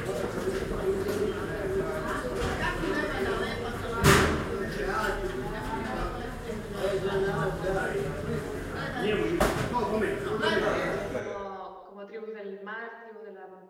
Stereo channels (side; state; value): both; identical; correlation 1.00